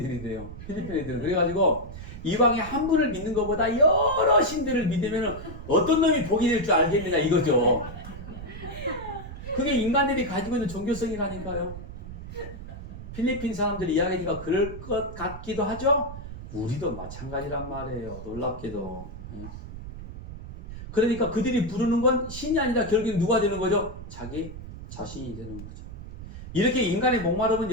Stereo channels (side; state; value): right; noise; rumble, 11 dB below the sound